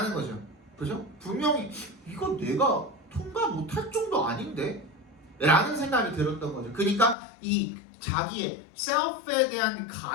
거죠. 그죠? 분명히 이거 내가 통과 못할 정도 아닌데? 라는 생각이 들었던 거죠. 그러니까 이 자기의 셀프에 대한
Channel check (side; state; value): right; drops out; at 7.2 s